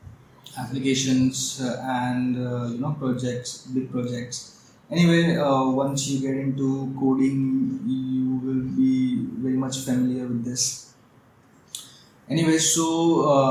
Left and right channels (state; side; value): identical; both; correlation 1.00